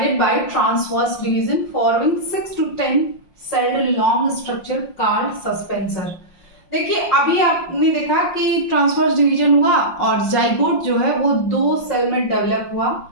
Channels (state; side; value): late; right; 5.7 ms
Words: by transverse division forming 6 to 10 celled long structure called suspensor। देखिए अभी आपने देखा कि ट्रांसवर्स डिवीजन हुआ और जाइगोट जो है वो 2 सेल में डेवलप हुआ,